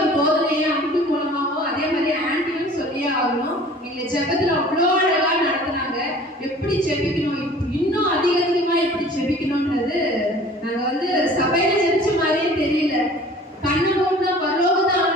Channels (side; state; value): both; normal; correlation 0.47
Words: போதனையை அன்பு மூலமாவோ அதே மாதிரி ஆண்டியும் சொல்லியே ஆகணும். எங்களை ஜெபத்துல அவ்வளோ அழகா நடத்தினாங்க. எப்படி ஜெபிக்கணும், இன்னும் அதிகமா எப்படி ஜெபிக்கணும்ன்றது நாங்க வந்து சபையில ஜெபிச்ச மாதிரியே தெரியல. கண்ணு மூணு பரலோகத்தை